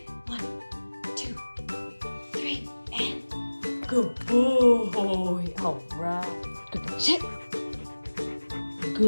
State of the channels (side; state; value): both; inverted; correlation -1.00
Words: 1, 2, 3, and good boy. All right, good boy, sit.